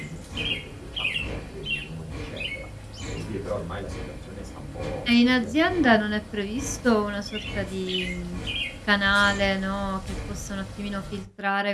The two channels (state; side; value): identical; both; correlation 1.00